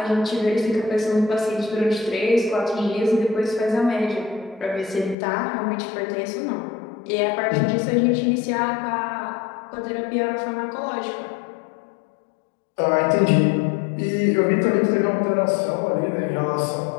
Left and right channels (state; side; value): drops out; right; at 5.2 s